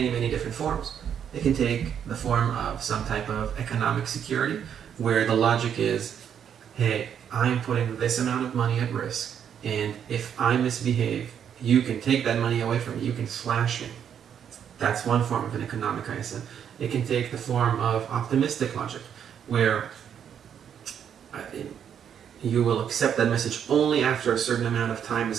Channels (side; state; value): left; quieter; 8.5 dB